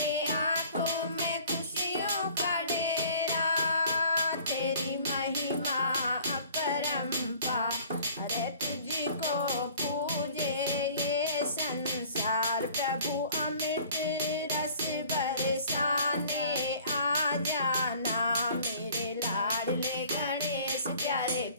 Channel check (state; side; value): inverted; both; correlation -0.51